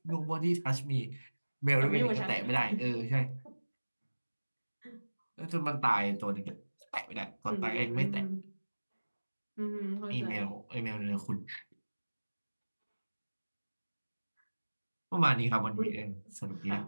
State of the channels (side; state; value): both; inverted; correlation -1.00